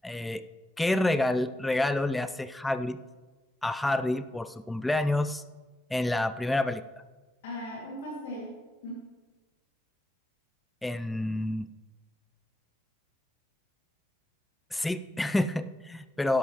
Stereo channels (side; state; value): both; normal; correlation 0.89